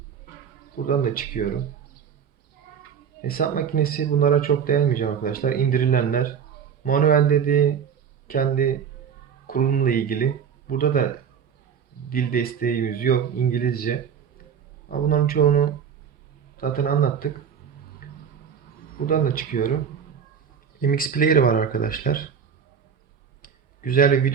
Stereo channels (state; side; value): quieter; left; 7.4 dB